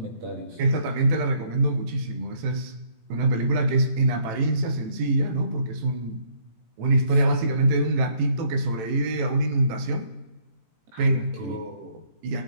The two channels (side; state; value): left; late; 18 ms